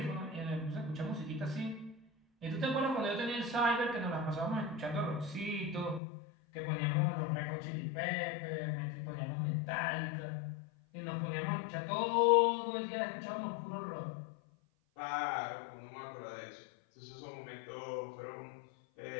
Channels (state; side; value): drops out; right; at 6.0 s